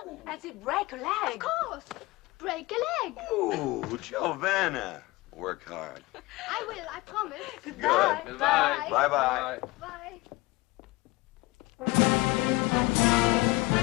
As if break a leg. Of course. Break a leg. Ooh, Giovanna. Work hard. I will, I promise. Goodbye. Good. Goodbye. Bye-bye. Bye.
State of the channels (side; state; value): right; quieter; 21.3 dB